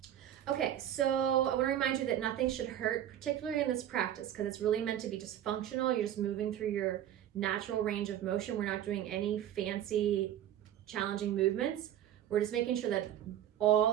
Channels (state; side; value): quieter; left; 11.3 dB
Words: Okay, so I want to remind you that nothing should hurt, particularly in this practice, because it's really meant to be just functional. You're just moving through your natural range of motion. We're not doing any fancy, challenging movements. We're just making sure that